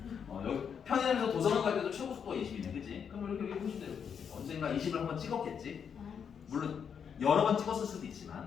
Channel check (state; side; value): quieter; right; 7.3 dB